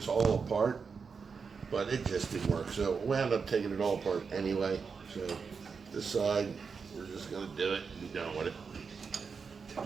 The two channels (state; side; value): quieter; left; 5.5 dB